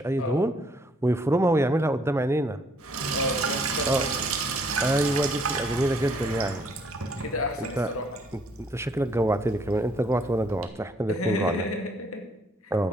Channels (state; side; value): normal; both; correlation 0.65